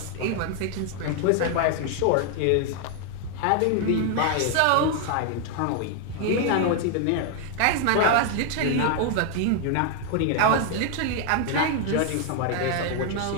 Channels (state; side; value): different; both; correlation 0.00